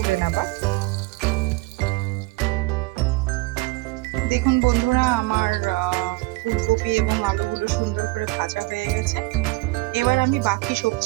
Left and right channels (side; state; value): left; quieter; 23.0 dB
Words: নেবার। দেখুন বন্ধুরা, আমার ফুলকপি এবং আলুগুলো সুন্দর করে ভাজা হয়ে গেছে। এবার আমি বাকি